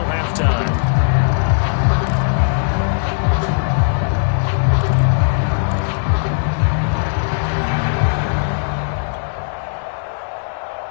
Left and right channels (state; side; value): silent; right; digital silence